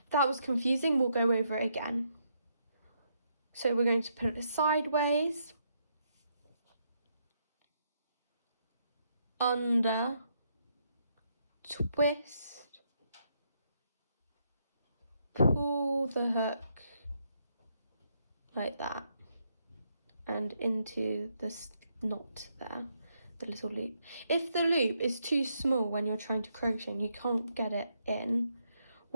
If that was confusing, we'll go over it again. So we're going to put it sideways, under, twist, pull the hook like that and into this knot there, the little loop. If the loop is too small when you're trying to crochet and you can't get it in,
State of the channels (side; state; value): both; inverted; correlation -0.76